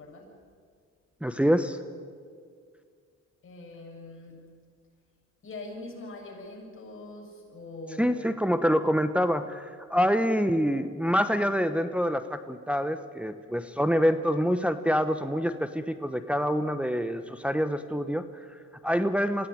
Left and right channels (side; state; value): both; normal; correlation 0.90